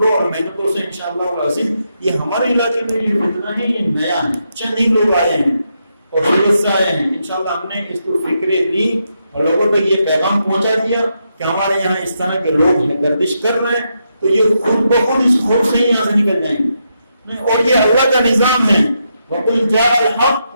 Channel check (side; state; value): both; inverted; correlation -0.82